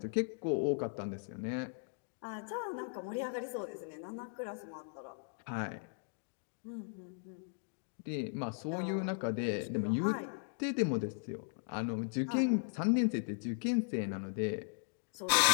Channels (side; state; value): right; silent; digital silence